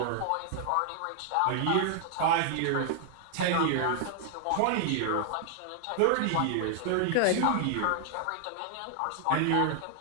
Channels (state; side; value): different; both; correlation 0.00